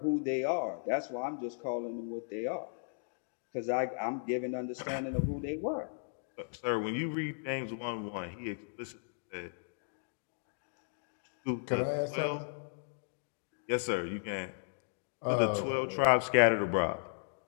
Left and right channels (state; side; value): silent; right; digital silence